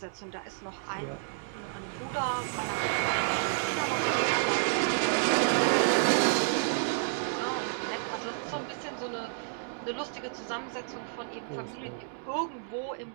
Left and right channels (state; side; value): silent; left; digital silence